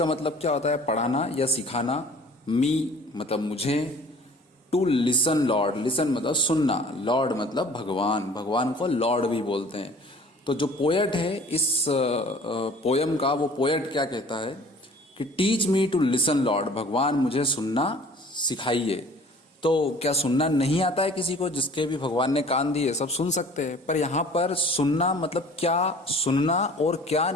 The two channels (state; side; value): normal; both; correlation 0.49